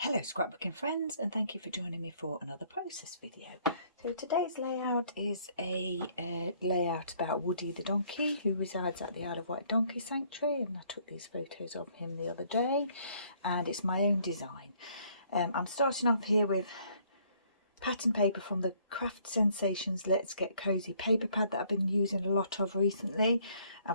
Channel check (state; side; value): inverted; both; correlation -0.64